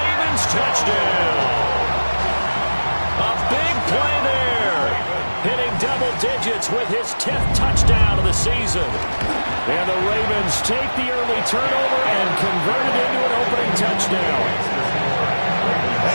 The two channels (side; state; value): both; inverted; correlation -1.00